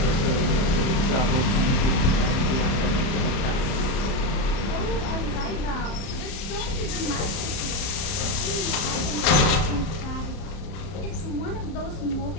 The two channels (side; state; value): right; late; 31 ms